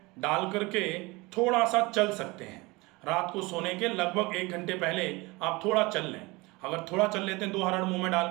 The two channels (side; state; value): left; quieter; 23.7 dB